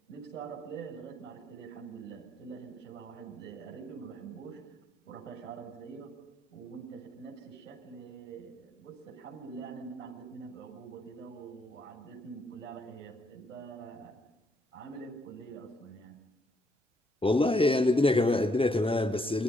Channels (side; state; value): both; normal; correlation 0.72